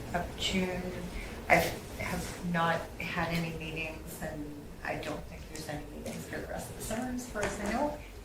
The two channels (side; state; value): both; identical; correlation 1.00